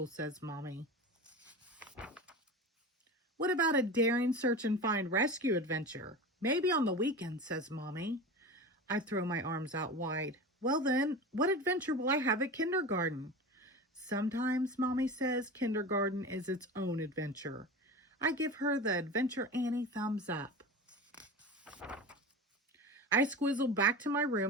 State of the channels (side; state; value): both; normal; correlation 0.30